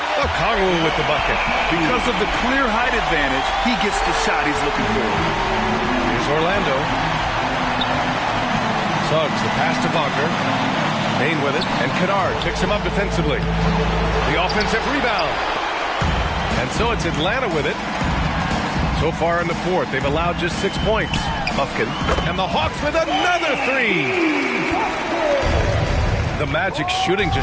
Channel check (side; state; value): both; identical; correlation 1.00